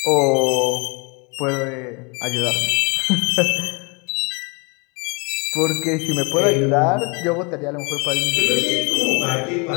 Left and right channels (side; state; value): right; quieter; 30.8 dB